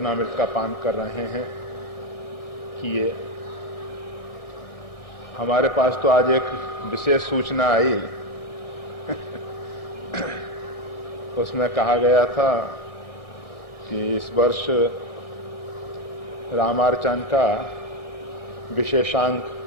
का पान कर रहे हैं कि ये हमारे पास तो आज एक विशेष सूचना आई उसमें कहा गया था कि इस वर्ष रामार्चन का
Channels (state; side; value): late; right; 1.6 ms